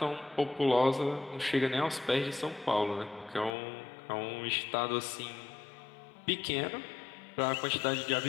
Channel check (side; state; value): right; drops out; at 3.5 s